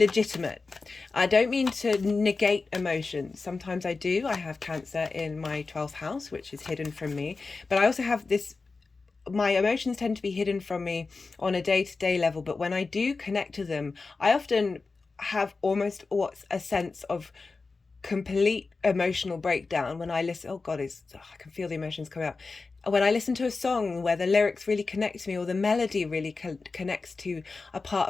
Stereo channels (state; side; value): quieter; right; 4.1 dB